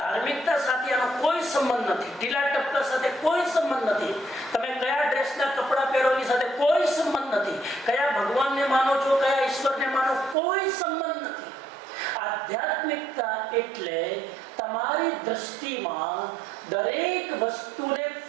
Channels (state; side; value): drops out; left; at 10.4 s